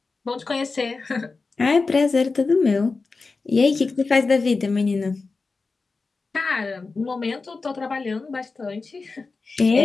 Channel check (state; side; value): quieter; right; 4.1 dB